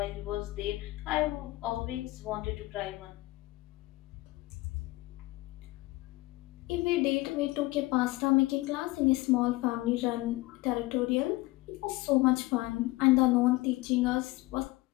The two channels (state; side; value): quieter; right; 20.1 dB